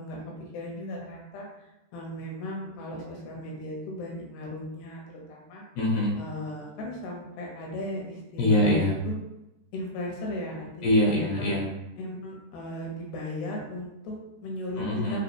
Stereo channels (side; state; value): right; late; 13 ms